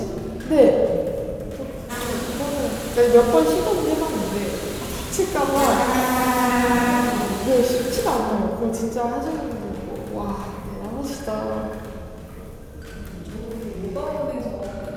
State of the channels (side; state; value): both; identical; correlation 1.00